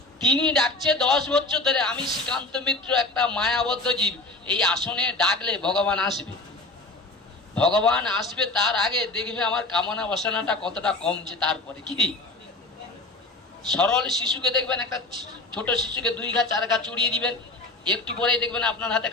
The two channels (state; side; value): quieter; right; 3.1 dB